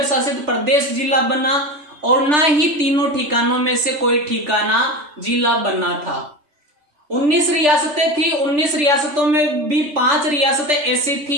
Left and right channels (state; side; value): late; left; 3.4 ms